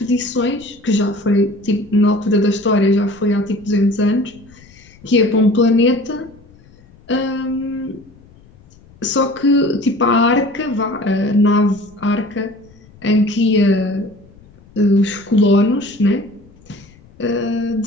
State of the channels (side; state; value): left; noise; rumble, 26 dB below the sound